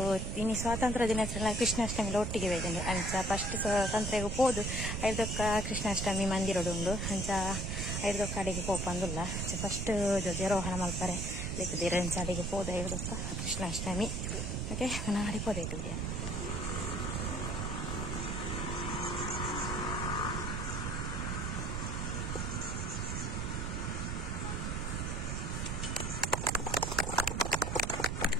ಇನ್ನು ಸ್ವಾತಂತ್ರ್ಯ ದಿನಾಚರಣೆ ಕೃಷ್ಣಾಷ್ಟಮಿಲ ಒಟ್ಟಿಗೆ ವೇದೆಂಡು ಅಂಚ ಫಸ್ಟ್ ಸ್ವಾತಂತ್ರ್ಯಗೂ ಪೋದು ಐದೊಕ್ಕ ಕೃಷ್ಣಾಷ್ಟಮಿ ಮಂದಿರಡುಂಡು ಅಂಚ ಐದೊಕ್ಕ ಅಡಿಗೆ ಪೋಪಂದುಲ್ಲ ಅಂಚ ಫಸ್ಟ್ ಧ್ವಜಾರೋಹಣ ಮಲ್ಪರೆ ಲೆಕ್ಕದಿರ ಅಂಚ ಅಡಿಗೆ ಪೋದ ಐದೊಕ್ಕ ಕೃಷ್ಣಾಷ್ಟಮಿ ಓಕೆ ನಾನು ಅಡಿ ಪೋದೈತು ವಿಡಿಯೋ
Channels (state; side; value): noise; right; rumble, 1 dB below the sound